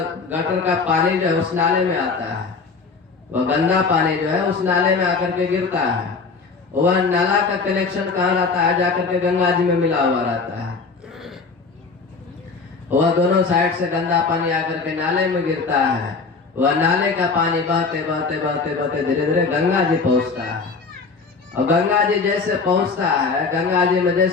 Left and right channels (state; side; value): quieter; right; 4.6 dB